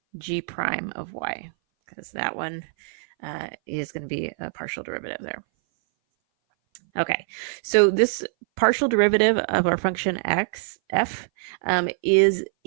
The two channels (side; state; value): left; silent; 59 dB below the other